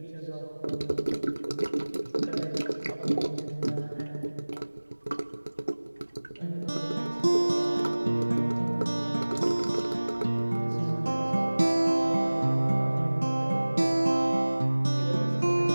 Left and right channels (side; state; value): both; inverted; correlation -1.00